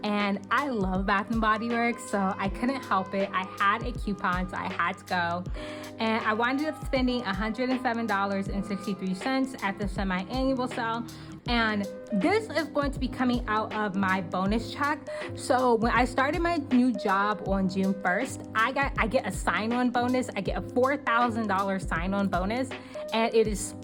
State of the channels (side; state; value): both; identical; correlation 1.00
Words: And I love Bath and Body Works, so I couldn't help it. I had a coupon, so I had to go. And I wound up spending $107.63 at the semi-annual sale. And this is going to be coming out of my bonus check. So when I started my new job on June 1st, I get a sign-on bonus. I get a $4,000 sign-on bonus, and it is